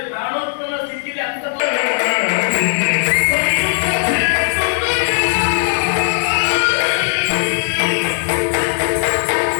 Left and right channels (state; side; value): silent; right; digital silence